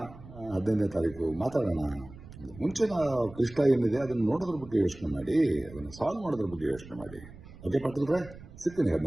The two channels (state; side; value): noise; right; rumble, 18 dB below the sound